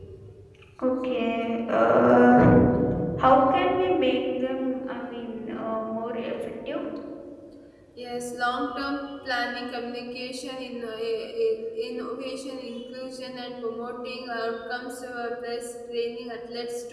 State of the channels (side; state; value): both; identical; correlation 1.00